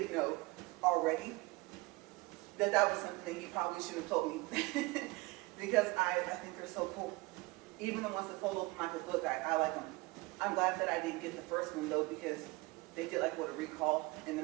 know already, that was something that he probably should have told me. Because I think they're so cool. Even the ones that fold open like a book, I like them. I'm glad that I didn't get the first one though, because they did like what, a recall, and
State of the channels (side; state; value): left; quieter; 23.3 dB